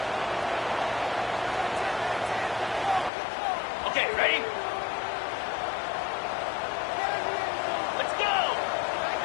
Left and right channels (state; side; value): drops out; right; at 3.1 s